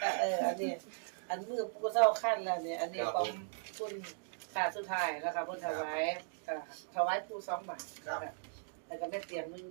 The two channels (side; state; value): left; silent; digital silence